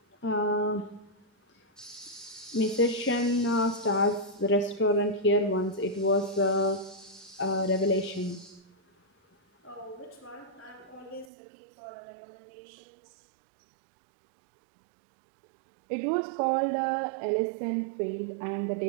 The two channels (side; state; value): left; drops out; at 11.2 s